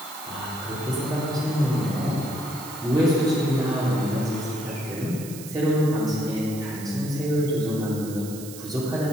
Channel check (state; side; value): noise; right; hiss, 13 dB below the sound